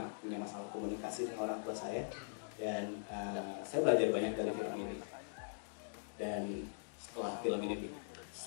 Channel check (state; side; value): silent; right; digital silence